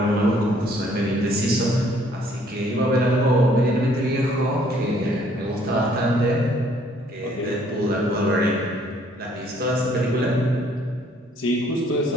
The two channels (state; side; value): normal; both; correlation 0.62